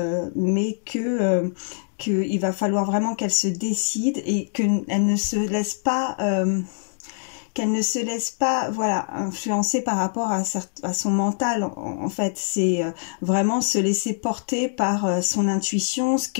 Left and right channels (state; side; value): silent; right; digital silence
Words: mais qu'il va falloir vraiment qu'elle se décide et qu'elle ne se laisse pas... voilà, influencer par rapport à son mental. En fait, c'est vraiment se laisser porter par son intuition, ce